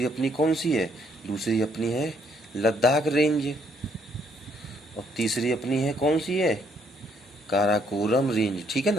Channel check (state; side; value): normal; both; correlation 0.69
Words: अपनी कौन सी है? दूसरी अपनी है लद्दाख रेंज। और तीसरी अपनी है कौन सी है? काराकोरम रेंज, ठीक है